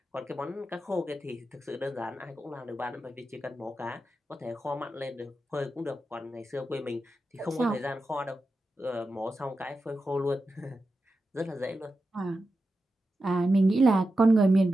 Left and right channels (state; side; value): normal; both; correlation 0.90